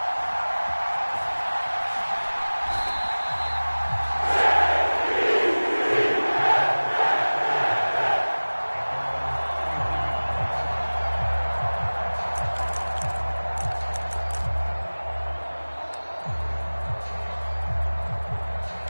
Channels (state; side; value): inverted; both; correlation -1.00